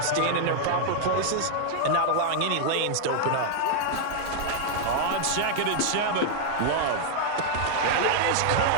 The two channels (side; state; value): both; different; correlation 0.00